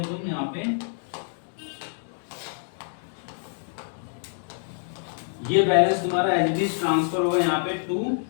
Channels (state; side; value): silent; right; digital silence